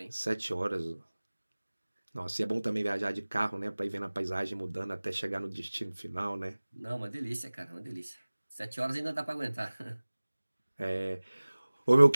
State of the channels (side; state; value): both; inverted; correlation -1.00